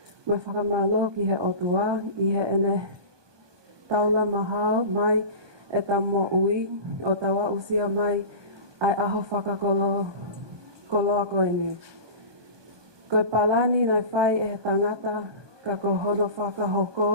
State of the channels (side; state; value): left; late; 1.2 ms